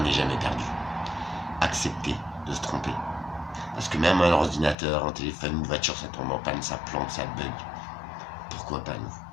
n'est jamais perdu. Accepter de se tromper. Parce que même un ordinateur, un téléphone, une voiture, ça tombe en panne, ça plante, ça bug. Pourquoi pas nous?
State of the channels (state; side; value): drops out; right; at 4.8 s